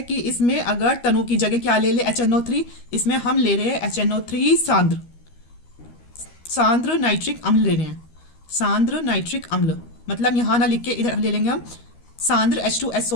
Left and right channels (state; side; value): late; right; 13 ms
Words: कि इसमें अगर तनु की जगह क्या ले ले, HNO3, इसमें हम ले रहे हैं HNO3 सांद्र नाइट्रिक अम्ल ले रहे हैं, सांद्र नाइट्रिक अम्ल, मतलब यहाँ ना लिख के इधर ले लेंगे हम, सांद्र